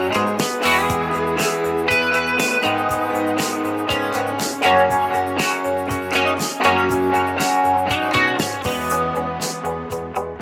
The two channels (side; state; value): both; identical; correlation 1.00